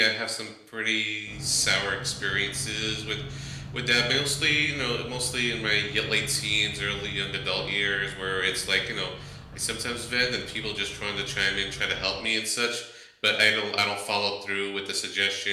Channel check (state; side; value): identical; both; correlation 1.00